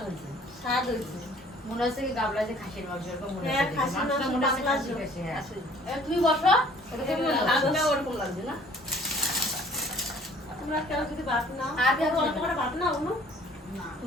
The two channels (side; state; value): both; normal; correlation 0.55